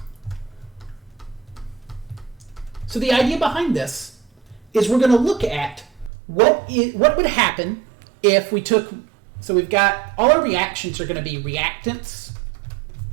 So the idea behind this is we're going to look at what would happen if we took, so we've got, all our reactions are going to be reactants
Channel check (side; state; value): left; drops out; at 6.1 s